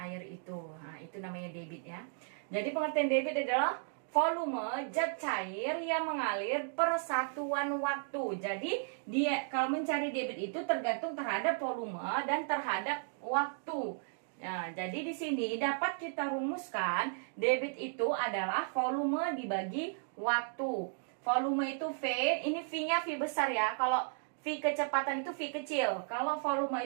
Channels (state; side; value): silent; left; digital silence